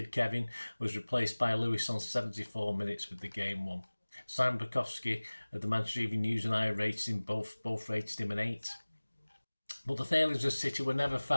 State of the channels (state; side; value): inverted; both; correlation -1.00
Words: Kevin was replaced by Lewis on 74 minutes with the game won. Simon Bukowski of the Manchester Evening News and I rated him both rated him an 8. But the failings of City were never